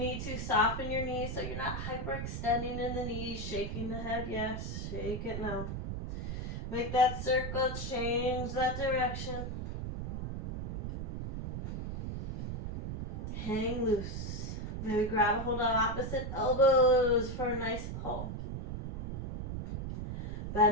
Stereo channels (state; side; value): noise; right; rumble, 4 dB below the sound